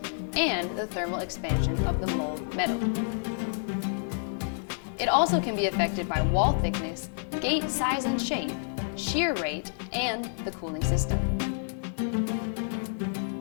and the thermal expansion of the mold metal. It also can be affected by wall thickness, gate size and shape, shear rate, and the cooling system.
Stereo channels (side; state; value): right; silent; digital silence